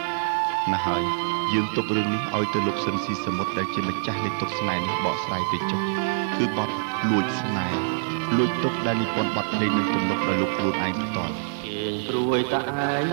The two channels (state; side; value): silent; left; digital silence